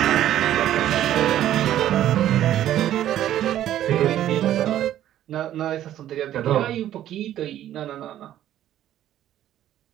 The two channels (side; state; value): left; quieter; 12.1 dB